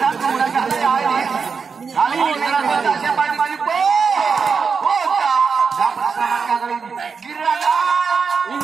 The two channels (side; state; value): left; quieter; 5.5 dB